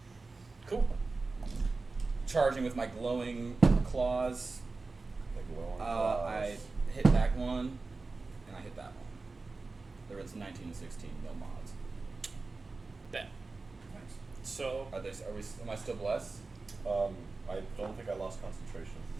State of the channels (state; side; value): quieter; left; 3.7 dB